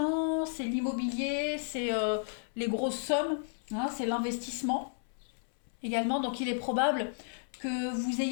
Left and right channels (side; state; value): right; silent; 56 dB below the other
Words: c'est l'immobilier, c'est les grosses sommes, hein, c'est l'investissement également. Donc, il est probable que vous